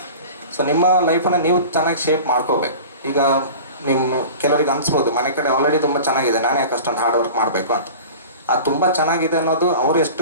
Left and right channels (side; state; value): both; inverted; correlation -0.37